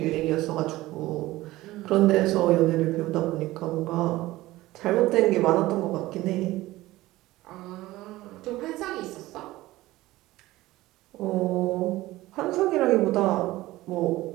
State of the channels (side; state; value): left; quieter; 17.6 dB